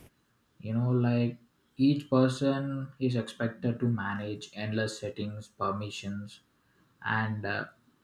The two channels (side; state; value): both; identical; correlation 1.00